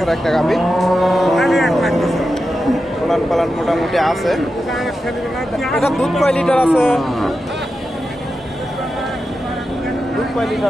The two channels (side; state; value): both; normal; correlation 0.90